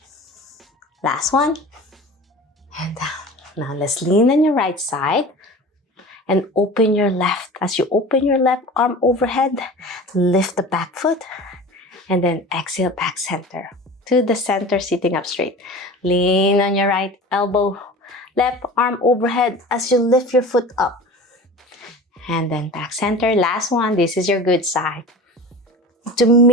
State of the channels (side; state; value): both; normal; correlation 0.36